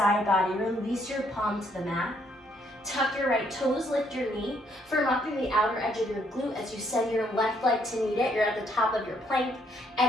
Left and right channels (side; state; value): both; normal; correlation 0.69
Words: body, release your palm to the mat. Tuck your right toes, lift your knee, firm up through the outer edge of your glute as you send your left leg to meet it. You're at the top of your plank.